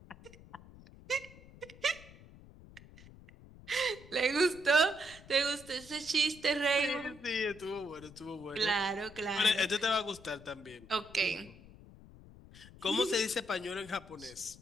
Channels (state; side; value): noise; left; rumble, 20 dB below the sound